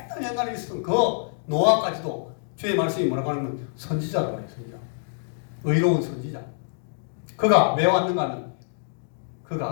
있었던 그 노아까지도 주의 말씀이 뭐라고 하냐면 선지자라고 해요. 선지자. 의로운 선지자. 그가 왜 왔는가 하면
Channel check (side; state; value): right; silent; digital silence